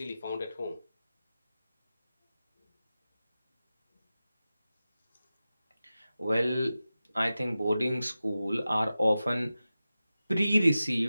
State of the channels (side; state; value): both; inverted; correlation -0.94